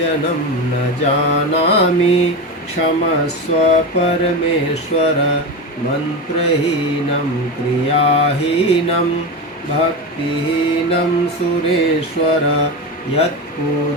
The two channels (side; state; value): both; normal; correlation 0.20